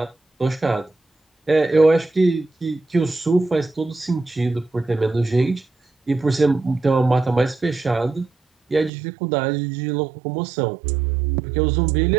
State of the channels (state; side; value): drops out; left; at 8.9 s